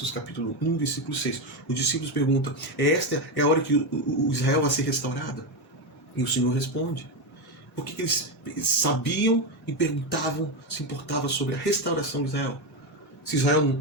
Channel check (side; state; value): both; normal; correlation 0.11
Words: capítulo 1, versículo 6. Os discípulos perguntam, esta é a hora que o Israel vai ser restaurado? E o Senhor responde. Por que eles sabiam e perguntavam, se importavam sobre a restauração de Israel? Se Israel